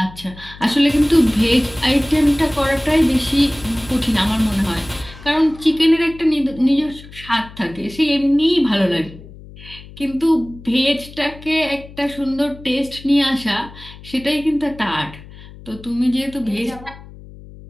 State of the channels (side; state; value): left; noise; hum, 18 dB below the sound